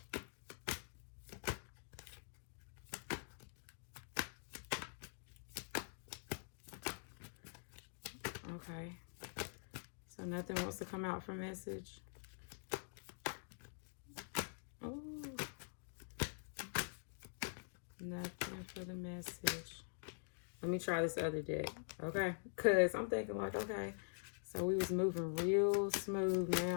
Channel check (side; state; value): right; silent; digital silence